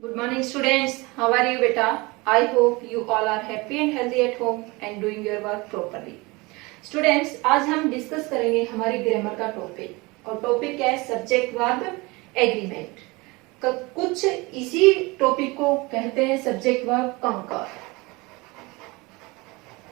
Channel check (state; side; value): quieter; left; 24.4 dB